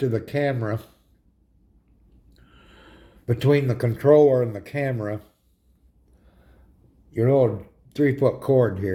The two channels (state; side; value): identical; both; correlation 1.00